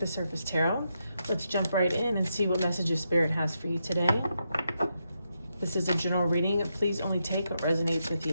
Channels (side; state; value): both; inverted; correlation -0.82